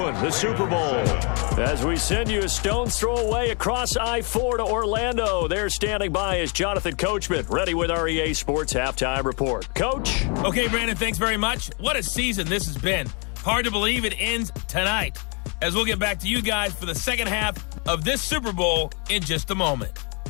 the Super Bowl. As we send you a stone's throw away across I-4 to Orlando. There standing by is Jonathan Coachman, ready with our EA Sports Halftime Report. Coach? Okay, Brandon, thanks very much. What a season this has been. Hard to believe it ends tonight, as we'll get back to you guys for the second half of this Super Bowl in just a moment.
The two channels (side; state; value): right; quieter; 34.8 dB